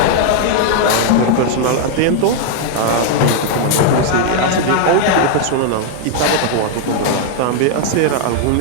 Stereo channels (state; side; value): different; both; correlation 0.00